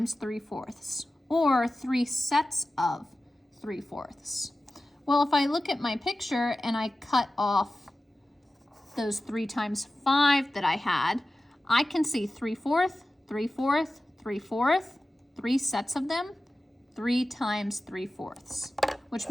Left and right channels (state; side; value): normal; both; correlation 0.95